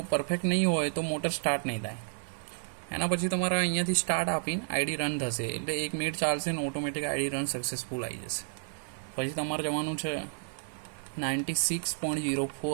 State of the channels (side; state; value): left; silent; digital silence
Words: પરફેક્ટ નહીં હોય તો મોટર સ્ટાર્ટ નહીં થાય. એના પછી તમારે અહીંયાથી સ્ટાર્ટ આપીને આઈડી રન થશે, એટલે 1 મિનિટ ચાલશે ને ઓટોમેટિક આઈડી રન સક્સેસફુલ આવી જશે. પછી તમારે જવાનું છે